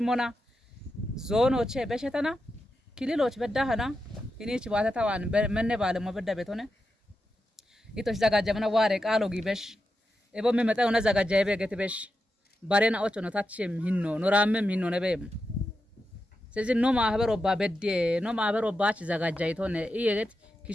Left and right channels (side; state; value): both; normal; correlation 0.88